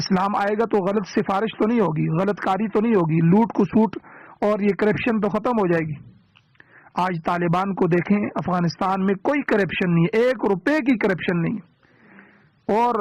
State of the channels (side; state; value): both; identical; correlation 1.00